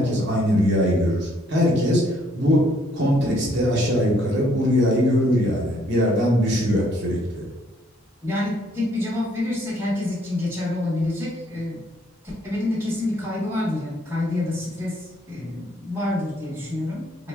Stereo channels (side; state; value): both; normal; correlation 0.67